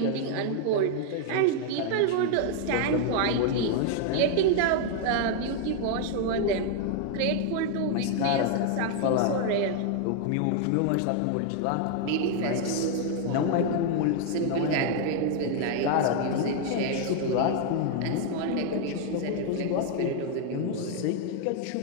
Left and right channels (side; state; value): both; different; correlation 0.00